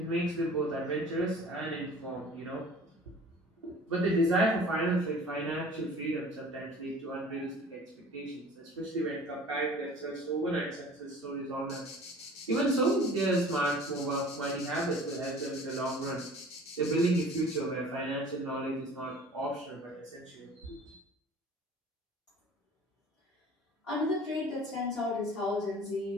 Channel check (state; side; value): normal; both; correlation 0.46